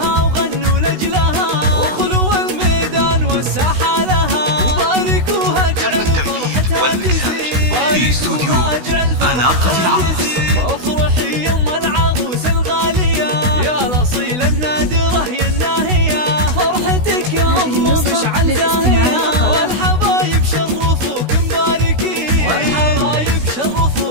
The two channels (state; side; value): late; left; 16 ms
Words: وغنوا لاجلها، وخلوا الميدان والساحه لها، وباركوها اجعل فرحتها تزيد في استوديو أناقة العروس. افرحي يم العروس الغاليه يا الاصيله النادره يا الناهيه، فرحتك يا ام مشعل زاهيه، والحبايب شرفوك مباركين، والحبايب